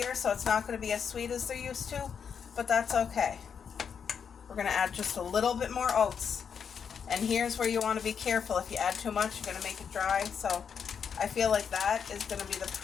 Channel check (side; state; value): right; quieter; 7.0 dB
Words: So it's not going to be as sweet as they're used to, but that's okay. We're going to add just a little bit more oats. And here's where you want to be careful. If you add too much, you're going to make it dry. So I feel like that is going to be the